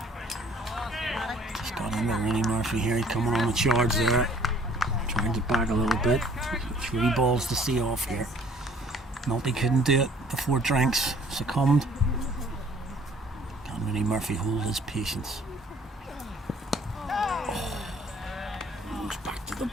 here, he's coming on the charge there. Trying to back a little bit. 3 balls to see off here. Nulty couldn't do it before Drinks succumbed. Can't really Murphy hold his patience. Goes back to the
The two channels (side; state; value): both; normal; correlation 0.56